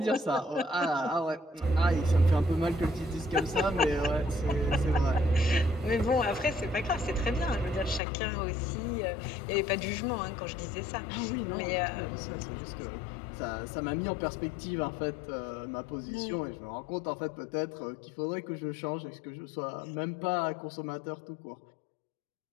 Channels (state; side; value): drops out; right; at 8.0 s